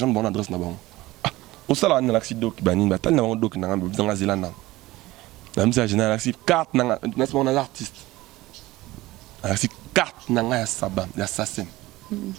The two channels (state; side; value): quieter; left; 18.4 dB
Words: bonne adresse na bon ah au salon on a l'accident qui bani batal na doc dans la zélande même si général accident carte na on a l'artiste accident carte na ya sabam ya assassin